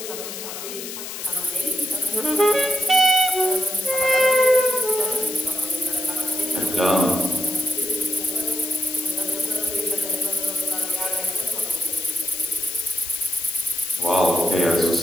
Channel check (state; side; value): noise; left; hiss, 8 dB below the sound